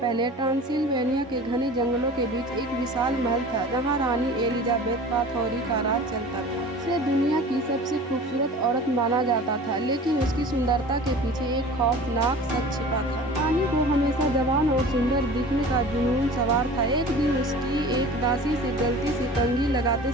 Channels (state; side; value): normal; both; correlation 0.40